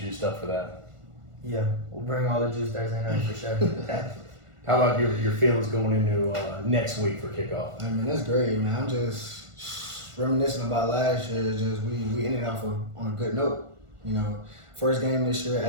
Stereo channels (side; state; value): left; late; 1.5 ms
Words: up for that. Yeah, we'll bring all the juice Thursday night for sure. How about your feelings going into next week for kickoff? I mean, that's great, man. I'm just reminiscing about last year. Just we ended off on a good note. You know, first game this year,